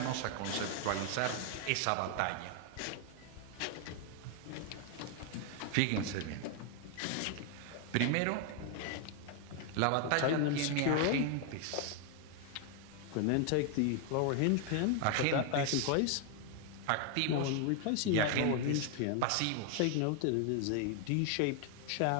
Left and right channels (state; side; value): different; both; correlation 0.00